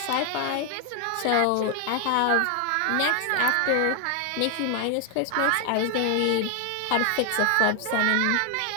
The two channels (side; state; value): both; different; correlation 0.00